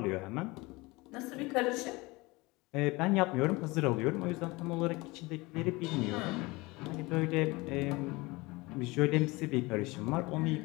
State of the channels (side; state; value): right; quieter; 23.2 dB